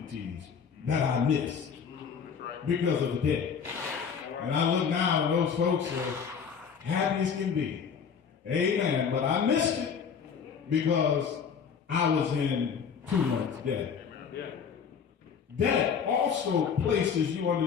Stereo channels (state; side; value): quieter; right; 6.7 dB